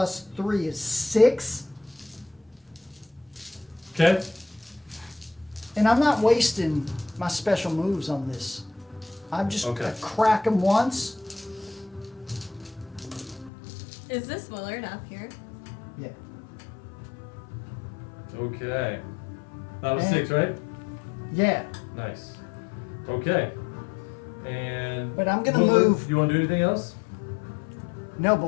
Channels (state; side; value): drops out; right; at 13.5 s